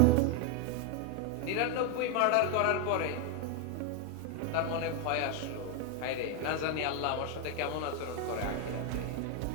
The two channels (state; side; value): different; both; correlation 0.01